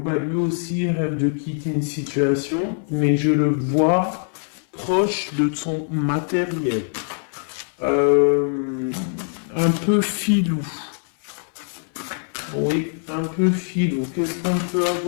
Lui aussi rêve de quitter une situation, mais je le vois proche de son matériel. Un peu filou. Oui, un peu filou. Qu'est-ce qu'on peut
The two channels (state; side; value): silent; right; 60 dB below the other